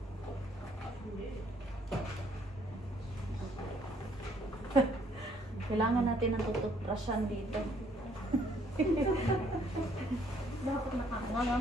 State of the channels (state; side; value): normal; both; correlation 0.65